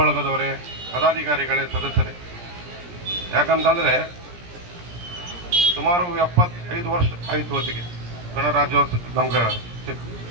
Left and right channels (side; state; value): left; late; 17 ms